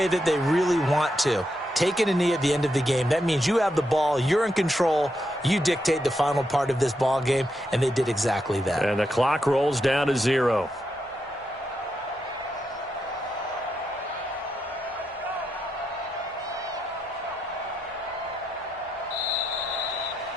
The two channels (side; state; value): both; normal; correlation 0.83